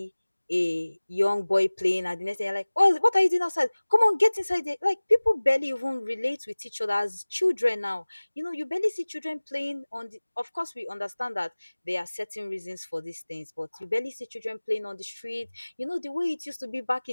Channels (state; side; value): inverted; both; correlation -1.00